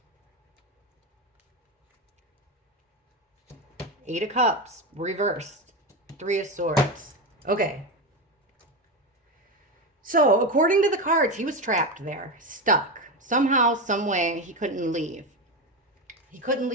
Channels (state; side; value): normal; both; correlation 0.16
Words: Eight of Cups, reversed. Three of Swords. Okay. So, according to the cards, he was trapped there, stuck. Somehow, some way, he couldn't leave. He couldn't